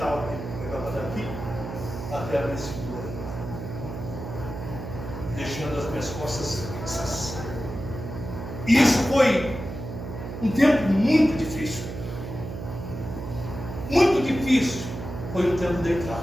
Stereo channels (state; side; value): noise; right; hum, 8 dB below the sound